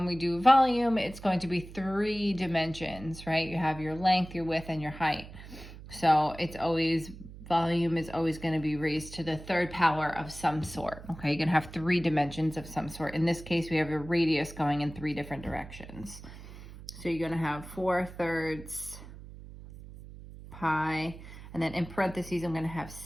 we do volume, it's going to be 3 dimensions, right? You have your length, your width, and your height. So it's always, volume is always going to be raised to the third power of some sort, okay? You're going to have 3 dimensions of some sort. In this case, we have a radius going in 3 different directions. So you're going to have 4/3 pi, and then in parentheses, I'm going to have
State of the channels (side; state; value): right; noise; hum, 15 dB below the sound